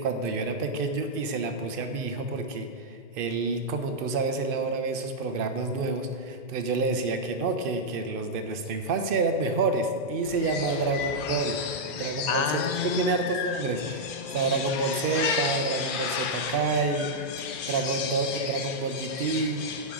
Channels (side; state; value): left; late; 2.5 ms